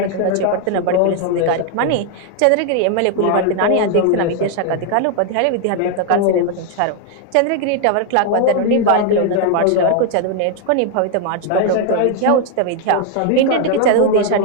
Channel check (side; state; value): both; different; correlation 0.00